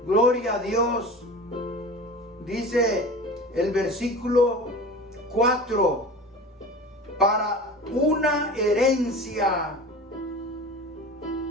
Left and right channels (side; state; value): both; normal; correlation 0.35